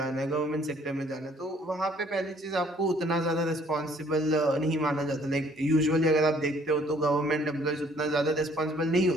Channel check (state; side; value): normal; both; correlation 0.60